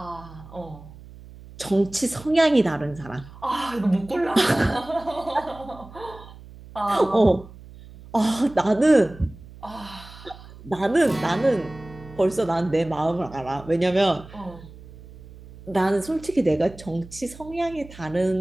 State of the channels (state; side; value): noise; right; hum, 18 dB below the sound